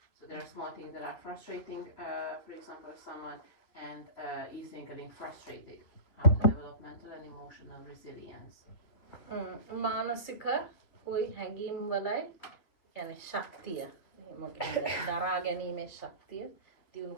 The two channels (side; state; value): right; late; 2.9 ms